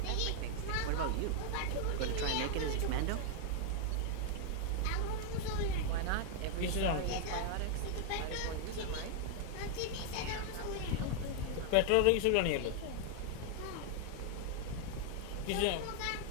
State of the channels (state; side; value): different; both; correlation 0.00